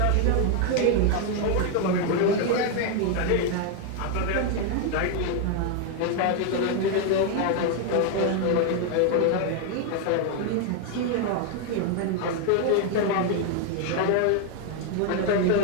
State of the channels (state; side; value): different; both; correlation 0.01